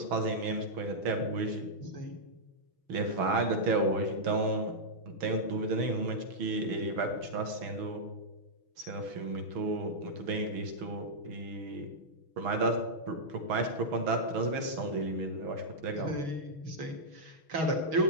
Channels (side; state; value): left; late; 6.2 ms